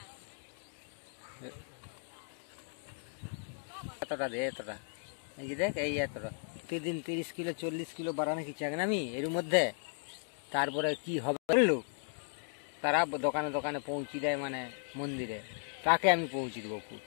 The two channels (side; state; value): right; silent; digital silence